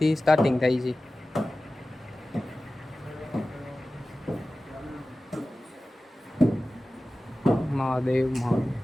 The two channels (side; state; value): both; normal; correlation 0.96